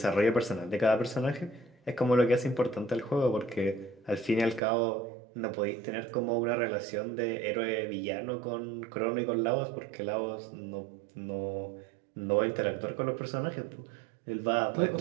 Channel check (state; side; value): drops out; left; at 4.6 s